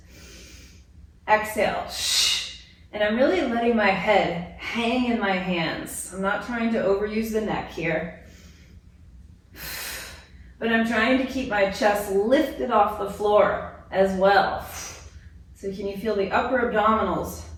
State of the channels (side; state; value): both; identical; correlation 1.00